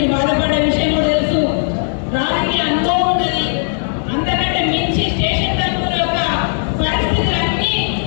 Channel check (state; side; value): silent; right; 55 dB below the other